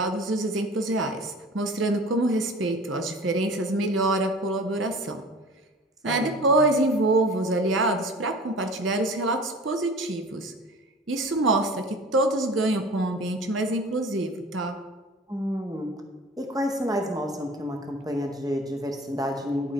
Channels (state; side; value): normal; both; correlation 0.42